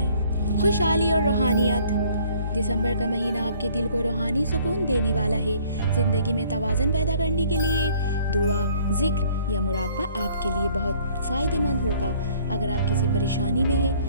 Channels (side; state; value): both; inverted; correlation -0.57